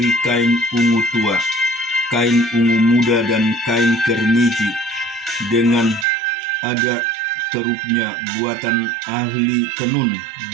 kain ungu tua, kain ungu muda, dan kain kermiji, dengan ada kerupnya buatan ahli tenun,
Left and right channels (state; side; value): drops out; left; at 6.1 s